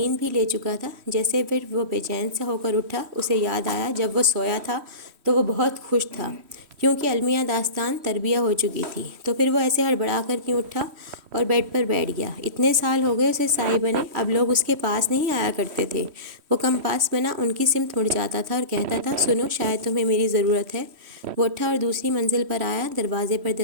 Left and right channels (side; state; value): left; late; 3.1 ms